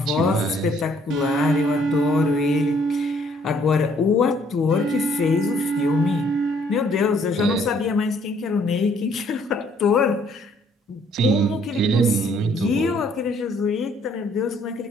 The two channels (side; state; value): both; normal; correlation 0.64